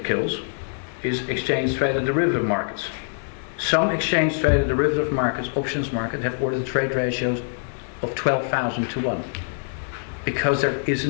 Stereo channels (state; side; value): silent; right; digital silence